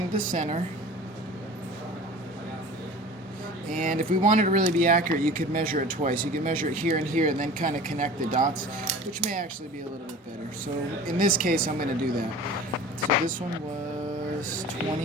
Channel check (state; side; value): normal; both; correlation 0.40